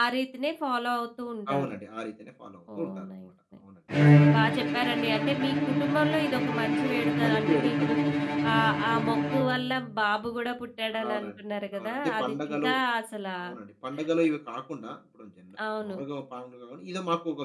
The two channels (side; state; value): both; identical; correlation 1.00